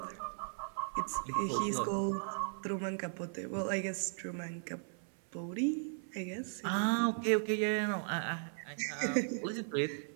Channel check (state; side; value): silent; left; 53 dB below the other